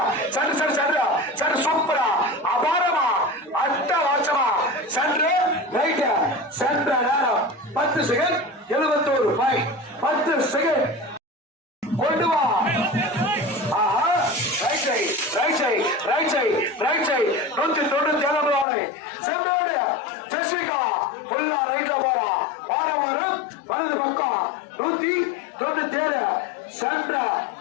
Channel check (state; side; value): drops out; right; at 18.7 s